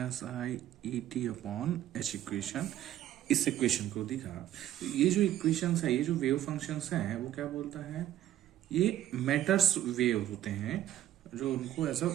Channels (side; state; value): left; quieter; 12.4 dB